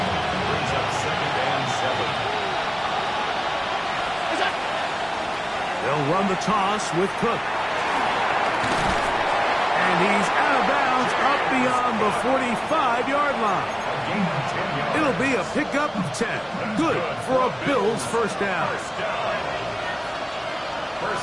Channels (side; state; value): both; identical; correlation 1.00